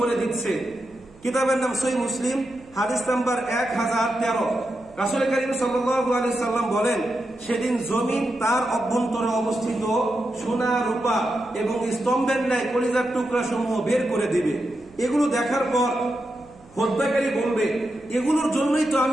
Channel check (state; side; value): noise; right; hum, 26 dB below the sound